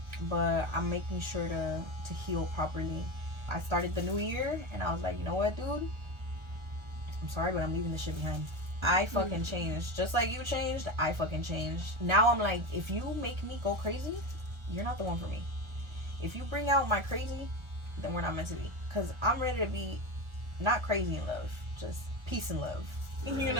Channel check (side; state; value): left; late; 1.4 ms